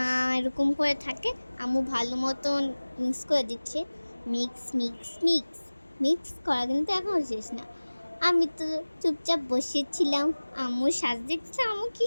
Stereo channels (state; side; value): inverted; both; correlation -1.00